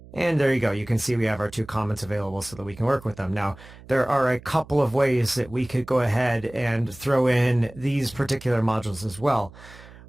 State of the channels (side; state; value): right; noise; hum, 20 dB below the sound